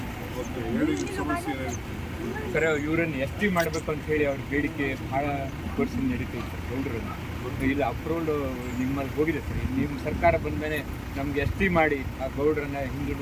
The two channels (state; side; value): identical; both; correlation 1.00